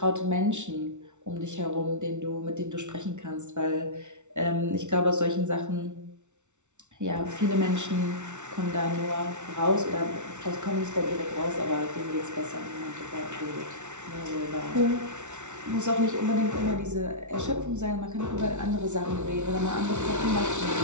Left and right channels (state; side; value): late; left; 0.84 ms